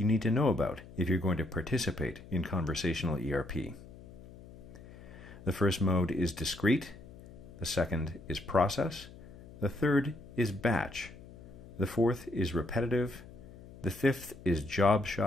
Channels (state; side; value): noise; left; hum, 18 dB below the sound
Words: need to know about if you're going to participate in conversational ERP. The first mode is discrete, the second is process, the third is batch, the fourth is repetitive, the fifth is job